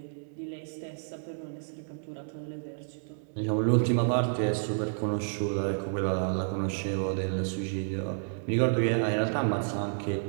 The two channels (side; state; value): left; silent; digital silence